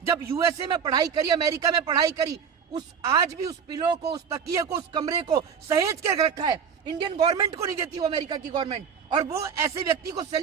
जब यूएसए में पढ़ाई करी, अमेरिका में पढ़ाई करी, उस आज भी उस पिलो को, उस तकिए को, उस कमरे को सहेज कर रखा है। इंडियन गवर्नमेंट को नहीं देती वो अमेरिका की गवर्नमेंट, और वो ऐसे व्यक्ति को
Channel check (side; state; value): left; quieter; 7.0 dB